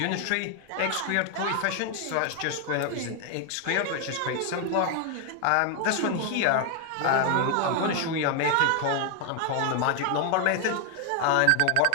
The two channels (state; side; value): different; both; correlation 0.00